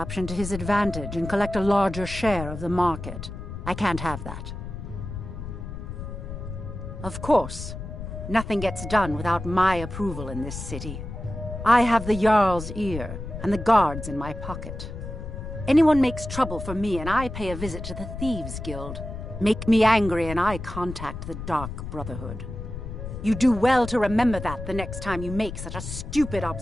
to his advantage and collect a larger share of the market. I can't have that. Of course, nothing gets done without my approval in this city. I have the Jarl's ear and the guards in my pocket. Anyone makes trouble for me and I pay a visit to the Thieves' Guild. Make me angry and I contact the Dark Brotherhood. You do well to remember that the next time you make such a stupid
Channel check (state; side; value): noise; left; rumble, 8 dB below the sound